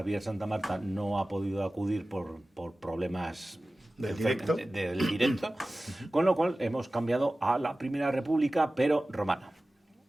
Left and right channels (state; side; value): normal; both; correlation 0.96